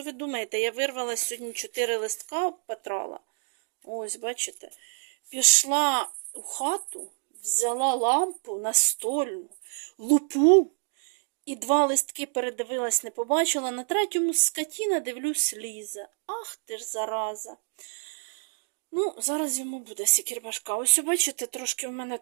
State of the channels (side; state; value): left; silent; digital silence